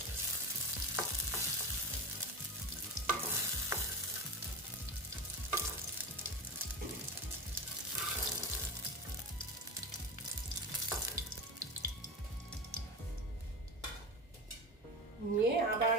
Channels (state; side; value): normal; both; correlation 0.24